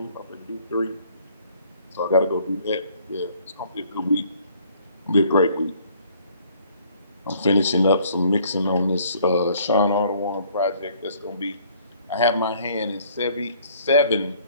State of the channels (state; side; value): inverted; both; correlation -0.60